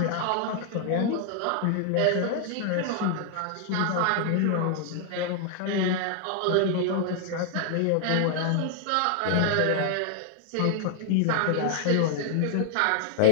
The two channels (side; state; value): both; different; correlation 0.00